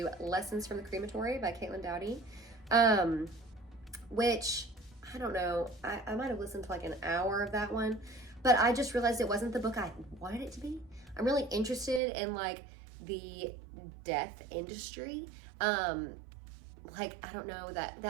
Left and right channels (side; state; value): left; drops out; at 12.0 s